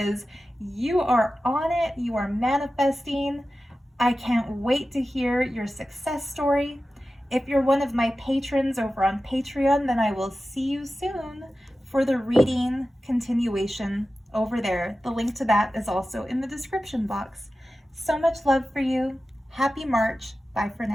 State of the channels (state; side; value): normal; both; correlation 0.94